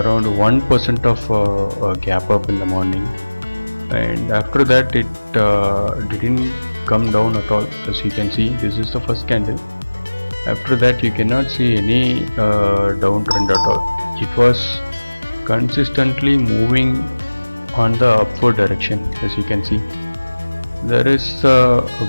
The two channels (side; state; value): both; inverted; correlation -1.00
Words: of gap up in the morning, and after that it didn't come down at all. As you can see, this is the first candle. After that, you cannot see any downtrend at all. It was consistently moving on the upward direction. As you can see, there is a